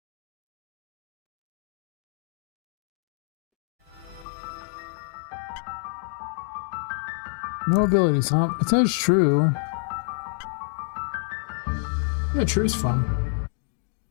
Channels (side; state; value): right; drops out; at 4.2 s